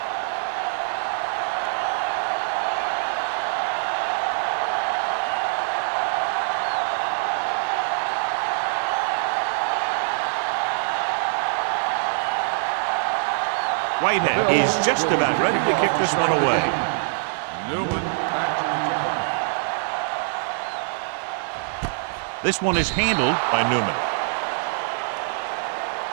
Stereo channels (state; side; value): silent; left; digital silence